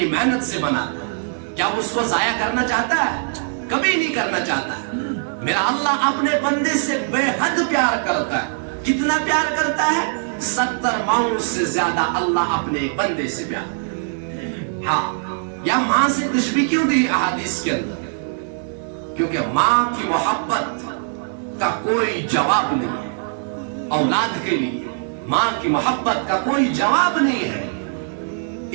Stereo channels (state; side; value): silent; left; 59 dB below the other